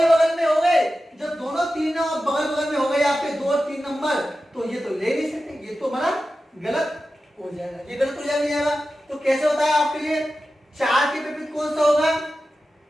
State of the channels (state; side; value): normal; both; correlation 0.93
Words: बगल में हो गए। जब दोनों 3 और बगल बगल में हो गए आपके 2 और 3 नंबर, तो ये तो ले नहीं सकते, ये तो हमारा गलत हो जाएगा, ये गलत हो जाएगा। तो कैसे होता है आपके लिए, 4 के विपरीत कौन सा होगा,